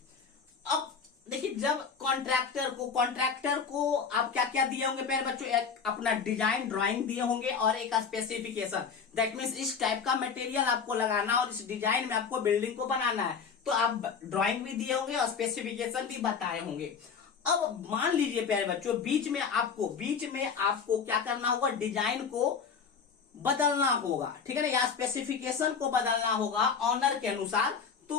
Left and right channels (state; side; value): quieter; right; 6.1 dB